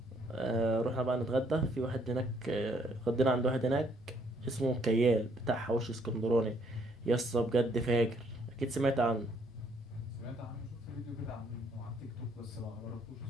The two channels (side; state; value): both; normal; correlation 0.67